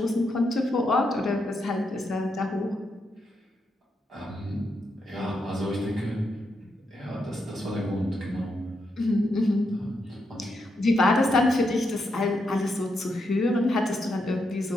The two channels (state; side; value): normal; both; correlation 0.82